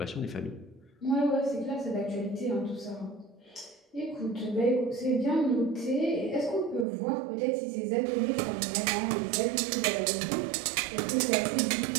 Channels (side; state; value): left; drops out; at 6.9 s